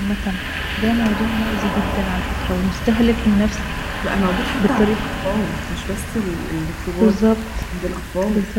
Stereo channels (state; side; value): identical; both; correlation 1.00